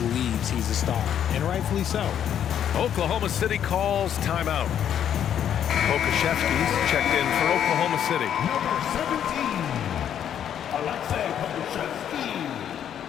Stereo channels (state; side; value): quieter; right; 9.5 dB